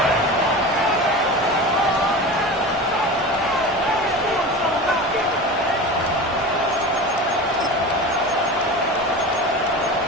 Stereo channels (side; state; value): both; normal; correlation 0.30